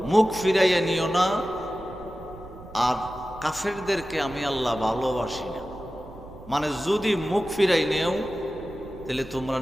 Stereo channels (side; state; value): right; noise; rumble, 18 dB below the sound